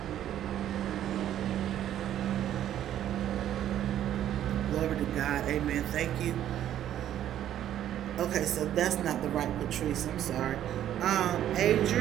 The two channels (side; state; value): left; quieter; 11.3 dB